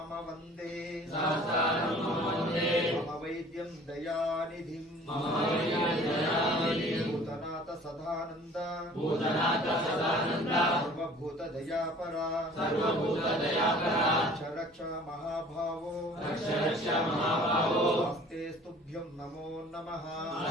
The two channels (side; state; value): both; normal; correlation 0.49